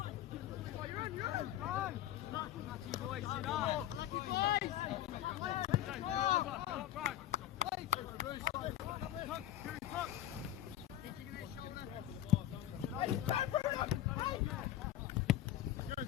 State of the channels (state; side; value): quieter; right; 12.8 dB